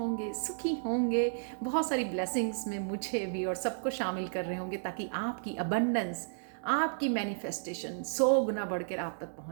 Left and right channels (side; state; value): left; silent; digital silence